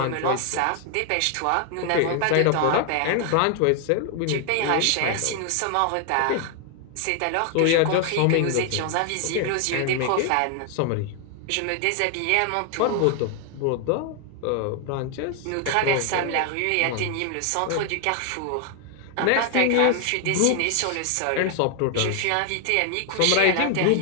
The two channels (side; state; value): both; different; correlation 0.00